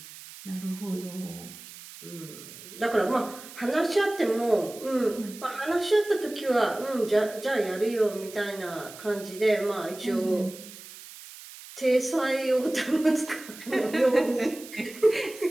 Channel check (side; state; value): right; noise; hiss, 16 dB below the sound